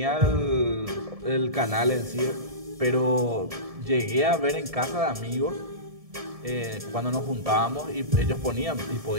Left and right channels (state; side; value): late; left; 1.7 ms